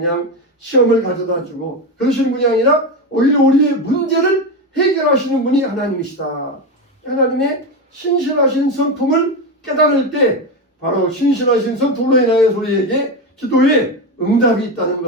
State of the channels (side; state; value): both; normal; correlation 0.15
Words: 시험을 가져다 주고 그러시는 분이 아니라 오히려 우리의 문제를 해결하시는 분이 하나님이시다. 하나님의 신실하신 성품을 깨달을 때 바로 신실하신 성품으로 인하여 우리에게 기도에 응답이 있다는